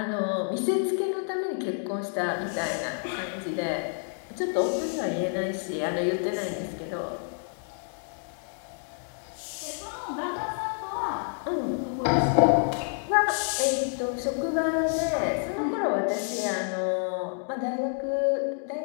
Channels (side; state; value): right; silent; 59 dB below the other